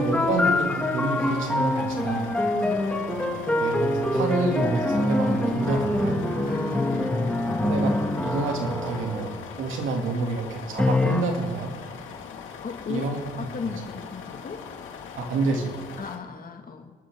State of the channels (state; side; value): normal; both; correlation 0.73